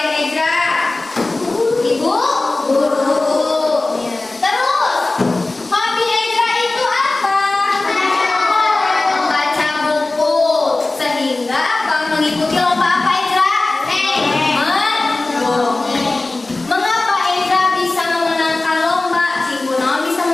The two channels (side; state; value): right; quieter; 3.1 dB